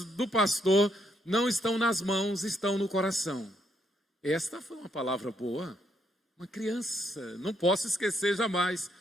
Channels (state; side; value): normal; both; correlation 0.74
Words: do pastor não estão nas mãos, estão no coração. Esta foi uma palavra boa. Uma criança, não posso esquecer jamais.